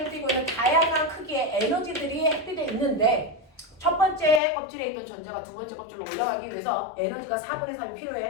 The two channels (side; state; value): right; drops out; at 4.4 s